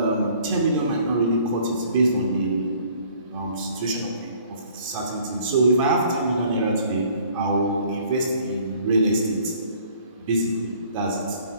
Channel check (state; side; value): inverted; both; correlation -0.56